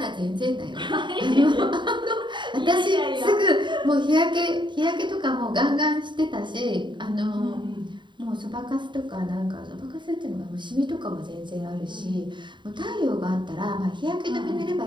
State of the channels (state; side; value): late; left; 0.23 ms